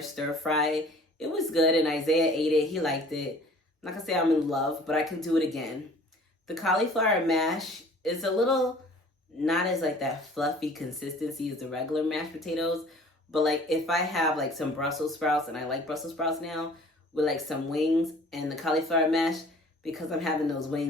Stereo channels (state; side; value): normal; both; correlation 0.50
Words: stir fry. It was good, and Isaiah ate it. He liked it. I'm not gonna say I'm in love, but I can do it again. The cauliflower mash is a little not as that fluffy consistency as the regular mashed potatoes, but if I have some Brussels sprouts, and I like Brussels sprouts now, with some wings and the cauliflower mash, because I'm having those